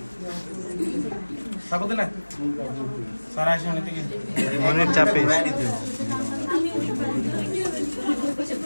সাবধানে না সারা আসে অনেক থেকে মনের চাপে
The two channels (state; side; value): inverted; both; correlation -1.00